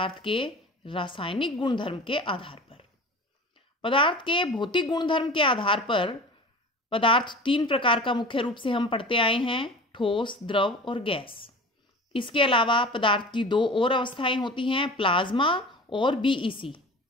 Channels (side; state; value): both; normal; correlation 0.37